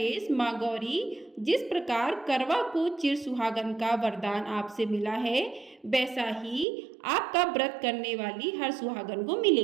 माँ गौरी, जिस प्रकार करवा को चिर सुहागन का वरदान आपसे मिला है, वैसा ही आपका व्रत करने वाली हर सुहागन को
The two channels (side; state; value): left; drops out; at 6.7 s